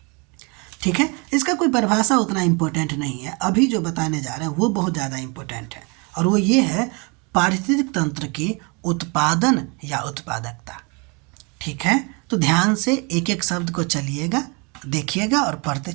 ठीक है, इसका कोई परिभाषा उतना इम्पोर्टेंट नहीं है, अभी जो बताने जा रहे हैं वो बहुत ज़्यादा इम्पोर्टेंट है और वो ये है पारिस्थितिक तंत्र की उत्पादन या उत्पादकता। ठीक है, तो ध्यान से एक एक शब्द को चलिएगा, देखिएगा और पढ़ते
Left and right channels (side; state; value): left; quieter; 31.0 dB